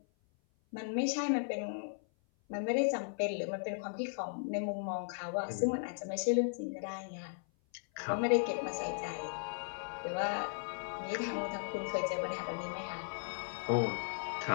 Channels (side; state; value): right; silent; 53 dB below the other